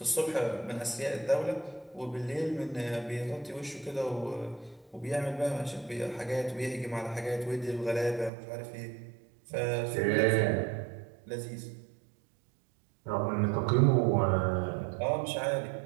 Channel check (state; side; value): drops out; left; at 8.3 s